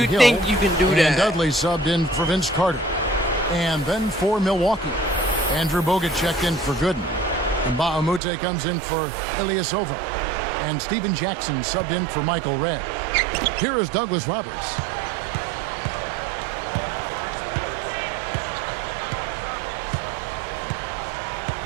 you Hill, think you can do and that? Dudley subbed in for Vince Carter. And then for Milwaukee, Andrew Bogut checked in for Gooden. And Bahamute comes in for Ilyasova. And Steven Jackson subbed in for Michael Redd. Here is Douglas Roberts.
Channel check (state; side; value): drops out; left; at 8.2 s